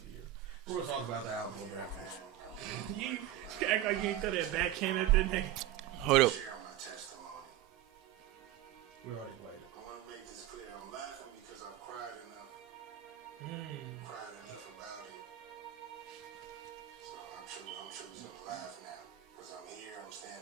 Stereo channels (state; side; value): quieter; left; 12.9 dB